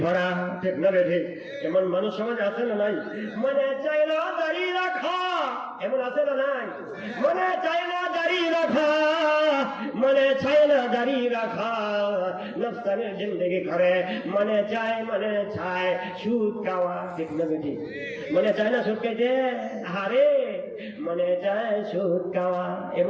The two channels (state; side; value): identical; both; correlation 1.00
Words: পরা, ঠিক না ঠিক? এমন মানুষ সমাজ আছে না নাই? মনে চাই না দাড়ি রাখা, এমন আছে না নাই? মনে চাই না দাড়ি রাখা, মনে চাই না দাড়ি রাখা, নফসানের জিন্দেগি করে, মনে চায় সুদ খাওয়া, ঠিক না ঠিক? মনে চায় না সুদ খাইতে, হারে মনে চায় সুদ খাওয়া,